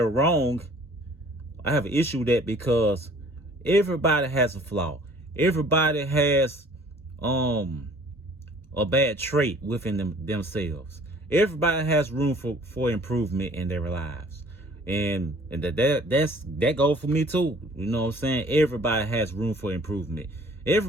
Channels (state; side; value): normal; both; correlation 0.53